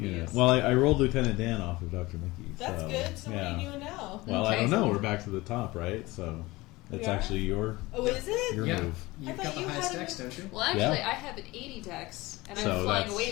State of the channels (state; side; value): quieter; right; 20.8 dB